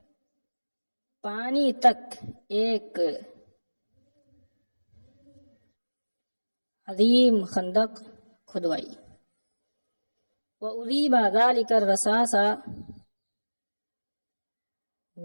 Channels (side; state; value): both; inverted; correlation -1.00